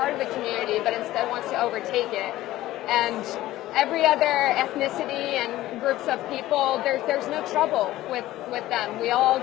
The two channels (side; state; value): right; quieter; 15.6 dB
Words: of the community, but instead wants to overtake it. And every other ethnicity and groups of people, there's no trouble with them. We all